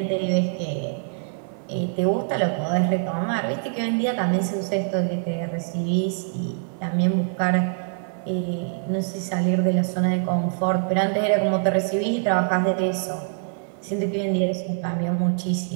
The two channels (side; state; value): left; silent; 56 dB below the other